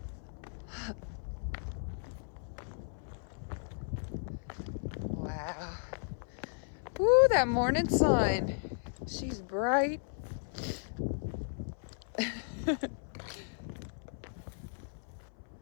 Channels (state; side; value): silent; right; 54 dB below the other